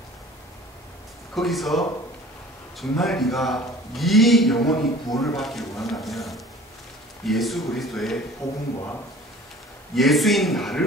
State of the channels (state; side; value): normal; both; correlation 0.46